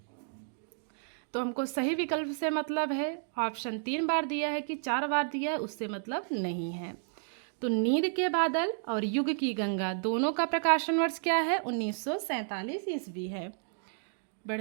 तो हमको सही विकल्प से मतलब है, ऑप्शन 3 बार दिया है कि 4 बार दिया है, उससे मतलब नहीं है। तो नींद के बादल और युग की गंगा दोनों का प्रकाशन वर्ष क्या है? 1947 ईस्वी है।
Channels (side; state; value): left; silent; digital silence